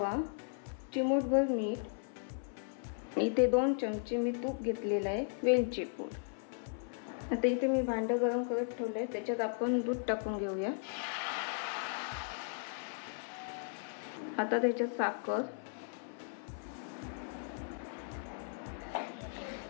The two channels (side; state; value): right; silent; 54 dB below the other